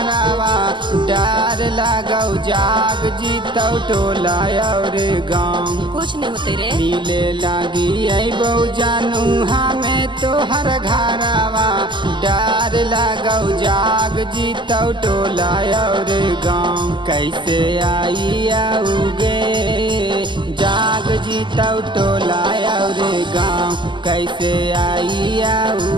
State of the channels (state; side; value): late; left; 0.23 ms